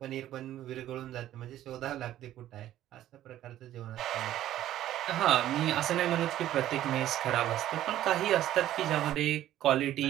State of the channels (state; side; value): quieter; left; 12.9 dB